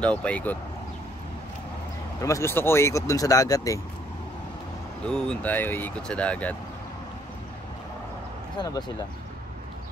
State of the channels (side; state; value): both; normal; correlation 0.66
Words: paikot. Pero mas gusto ko ikot dun sa dagat eh. Doon tayo ikot sa dagat. Saan na ba sila?